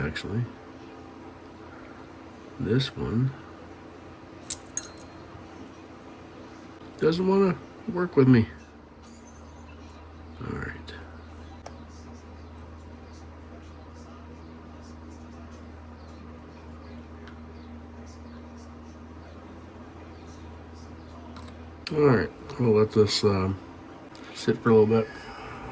This one doesn't want to work with me. All right. All right, we'll let this sit for a little bit.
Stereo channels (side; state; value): both; identical; correlation 1.00